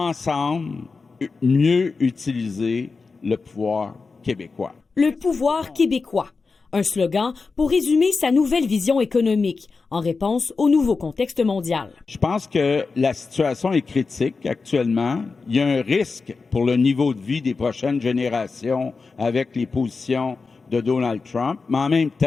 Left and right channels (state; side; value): quieter; right; 4.4 dB